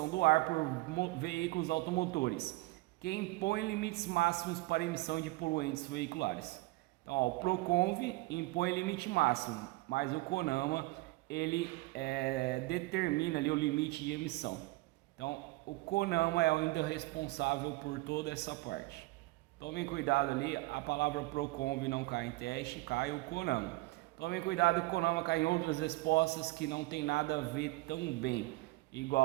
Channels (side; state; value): left; quieter; 21.1 dB